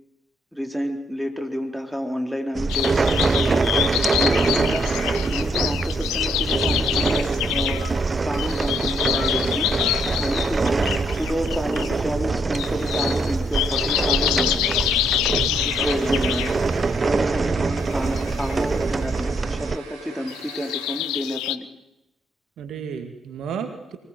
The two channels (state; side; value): normal; both; correlation 0.74